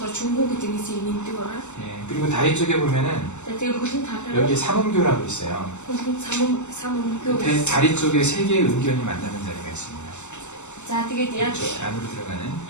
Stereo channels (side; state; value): right; late; 0.83 ms